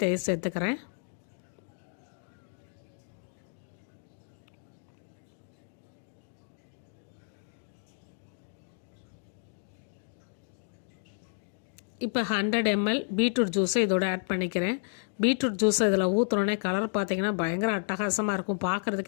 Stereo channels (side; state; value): right; silent; digital silence